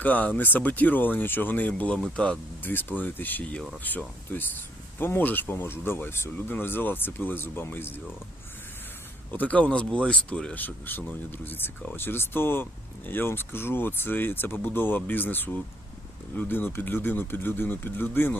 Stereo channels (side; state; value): both; normal; correlation 0.67